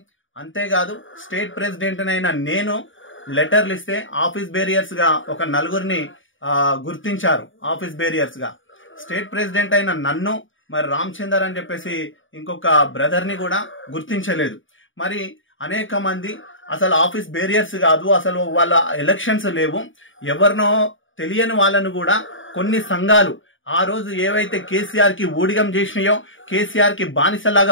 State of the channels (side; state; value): right; late; 0.57 ms